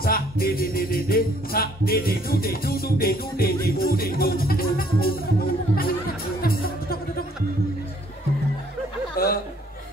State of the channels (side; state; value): both; normal; correlation 0.62